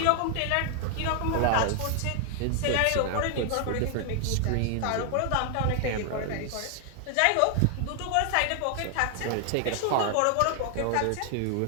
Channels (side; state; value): both; different; correlation 0.00